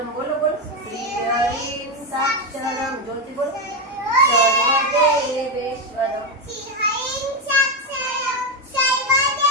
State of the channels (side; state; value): both; normal; correlation 0.08